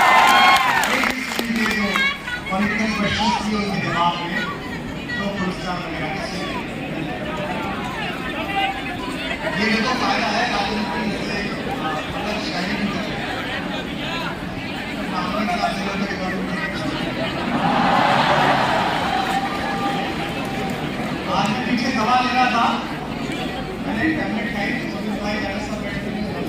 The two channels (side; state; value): both; identical; correlation 1.00